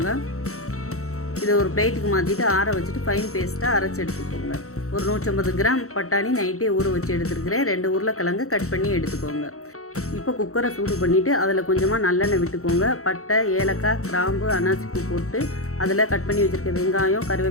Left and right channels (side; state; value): right; late; 0.64 ms